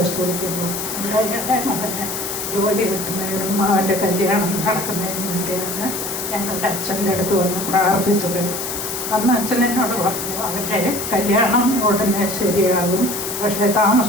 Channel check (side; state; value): left; noise; hiss, 5 dB below the sound